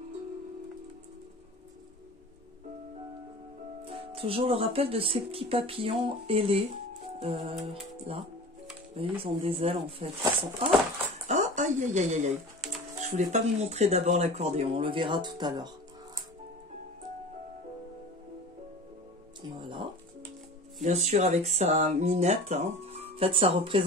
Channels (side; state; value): both; normal; correlation 0.37